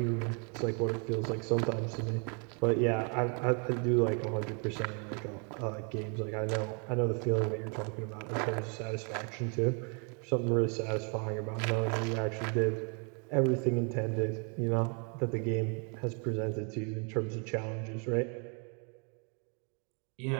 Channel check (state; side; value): quieter; left; 37.3 dB